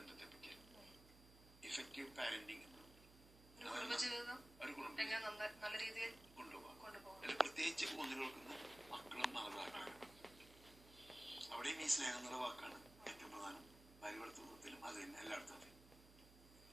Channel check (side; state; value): right; noise; hum, 20 dB below the sound